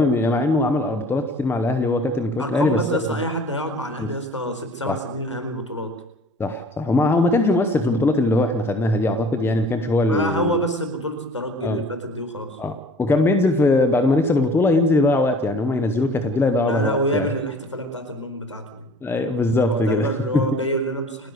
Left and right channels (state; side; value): normal; both; correlation 0.49